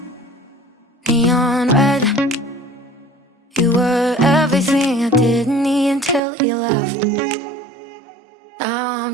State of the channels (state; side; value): drops out; left; at 6.2 s